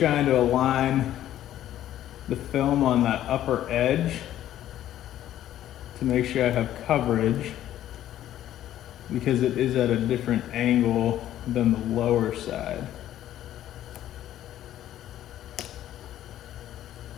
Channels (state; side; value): quieter; right; 12.4 dB